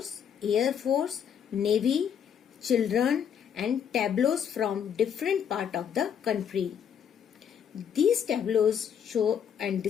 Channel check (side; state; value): right; quieter; 8.2 dB